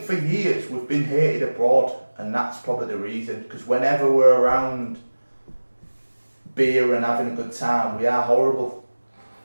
for years we've been hated abroad, and that's probably the reason. Because whenever we're around beer and having a good time, we are horrible.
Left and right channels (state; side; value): inverted; both; correlation -1.00